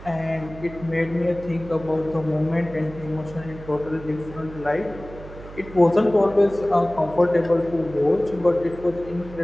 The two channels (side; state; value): right; noise; hum, 16 dB below the sound